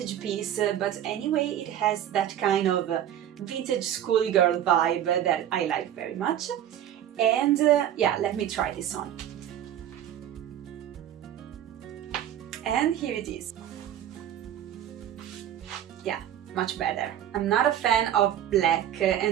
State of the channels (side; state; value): left; quieter; 10.9 dB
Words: piece, but anyway, it has that kind of vintage schoolgirl vibe that I like very much. And yeah, let me try this on. And here it is. Yeah, much better. I'm not a fan of black